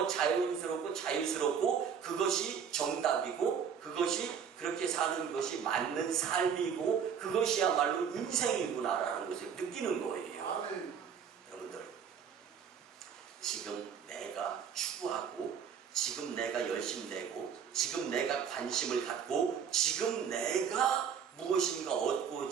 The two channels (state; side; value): quieter; left; 7.4 dB